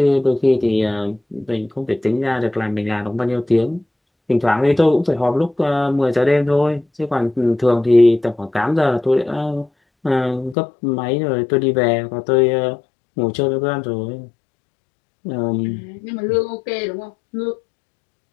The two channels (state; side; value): drops out; right; at 10.6 s